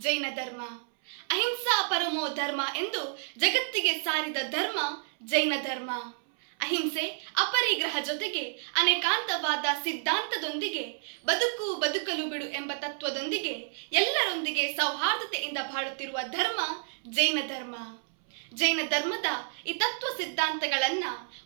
ಜೈನ ಧರ್ಮ. ಅಹಿಂಸಾ ಪರಮೋ ಧರ್ಮ ಎಂದು ಜಗತ್ತಿಗೆ ಸಾರಿದ ಧರ್ಮ ಜೈನ ಧರ್ಮ. ಅಹಿಂಸೆ ಅಪರಿಗ್ರಹ ಜೊತೆಗೆ ಅನೇಕಾಂತವಾದ ಸಿದ್ಧಾಂತದೊಂದಿಗೆ ಬದುಕಲು ಬಿಡು ಎಂಬ ತತ್ವದೊಂದಿಗೆ ಎಲ್ಲರೊಂದಿಗೆ ಸೌಹಾರ್ದತೆಯಿಂದ ಬಾಳುತ್ತಿರುವ ಧರ್ಮ ಜೈನ ಧರ್ಮ. ಜೈನ ಧರ್ಮದ ಈ ತತ್ವ ಸಿದ್ಧಾಂತಗಳನ್ನ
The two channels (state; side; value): silent; left; 58 dB below the other